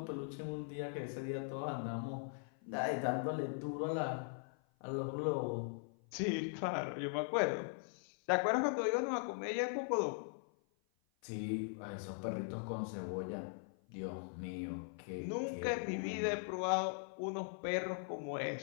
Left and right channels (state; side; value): silent; right; 51 dB below the other